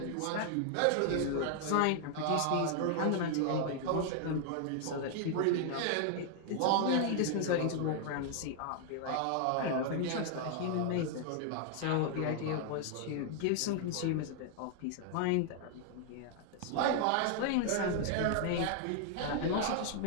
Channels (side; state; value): both; different; correlation 0.00